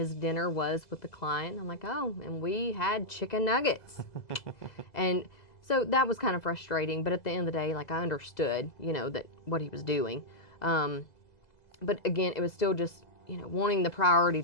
dinner was with the client. I'm like, oh, and we had chicken nuggets, and so that was kind of frustrating. But at the end of the day, like I understood, that what he was doing, but again, it was still just wanting the priority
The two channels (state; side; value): late; right; 2.0 ms